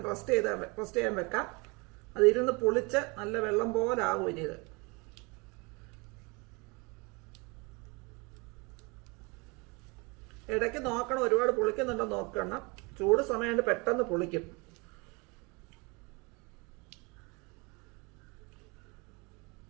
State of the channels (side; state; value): left; quieter; 28.4 dB